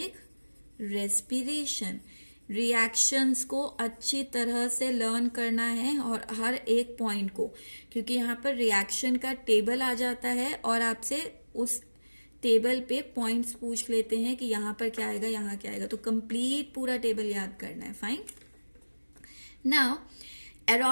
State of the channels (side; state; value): both; inverted; correlation -1.00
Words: रेस्पिरेशन. रिएक्शंस को अच्छी तरह से लर्न करना है और हर एक पॉइंट को, क्योंकि यहाँ पर रिएक्शन का टेबल आ जाता है और आपसे उस टेबल पे पॉइंट्स पूछ लेते हैं कि यहाँ पर क्या आएगा, यहाँ क्या आएगा, तो कंप्लीट पूरा टेबल याद करना है. फाइन. नाउ